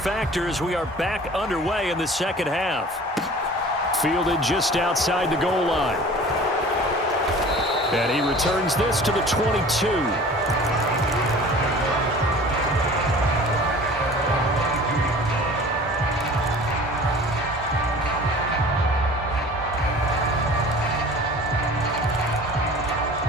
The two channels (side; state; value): both; normal; correlation 0.44